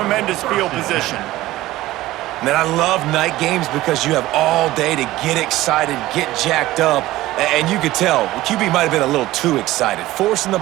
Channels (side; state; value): left; quieter; 16.7 dB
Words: field position. Man, I love night games because you have all day to get excited, get jacked up, and you could tell the QB might have been a little too excited. Forcing the